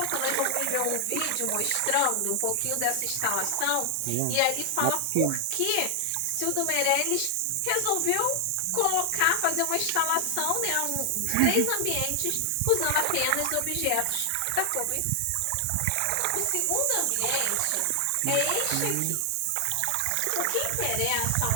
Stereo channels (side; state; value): both; different; correlation 0.00